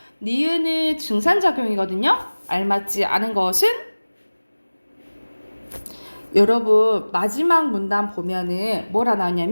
니은은 증산작용이거든요. 알맞지 않은 것은 여러분 마지막 문단 보면은 뭐라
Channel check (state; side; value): inverted; both; correlation -1.00